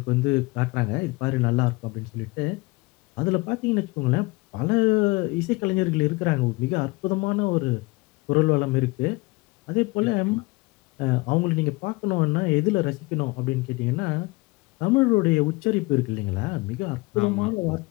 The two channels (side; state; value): right; quieter; 24.2 dB